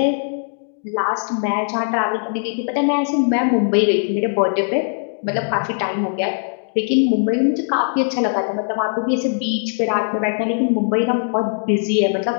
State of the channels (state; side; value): silent; right; digital silence